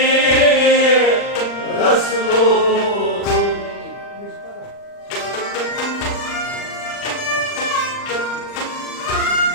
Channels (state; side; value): late; right; 40 ms